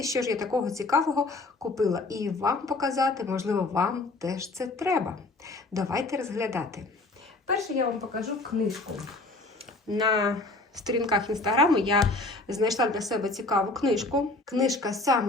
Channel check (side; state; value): right; quieter; 3.0 dB